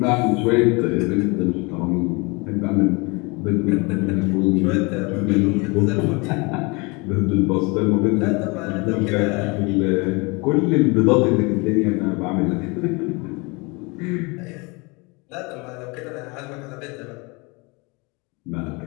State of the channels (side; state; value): right; quieter; 27.9 dB